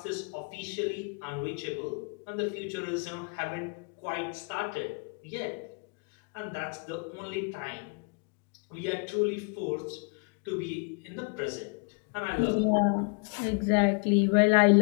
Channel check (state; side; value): quieter; right; 36.0 dB